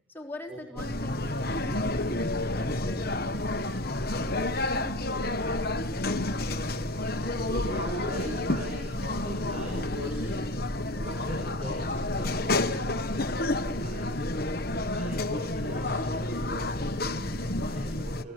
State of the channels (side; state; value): both; normal; correlation 0.34